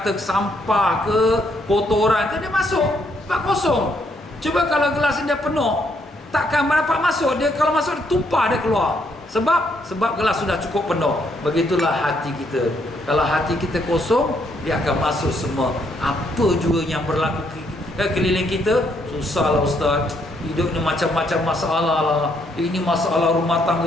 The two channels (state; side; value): normal; both; correlation 0.72